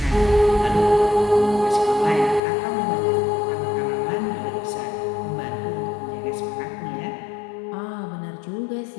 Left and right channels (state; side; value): drops out; right; at 2.4 s